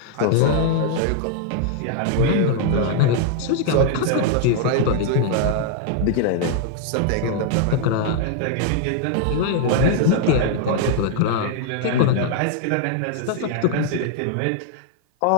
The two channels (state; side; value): different; both; correlation 0.00